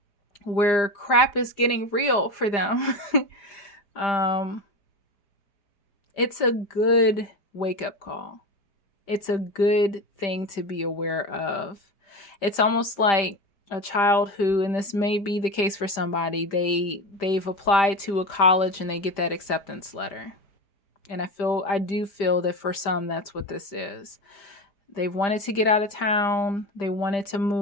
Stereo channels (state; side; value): late; right; 5.1 ms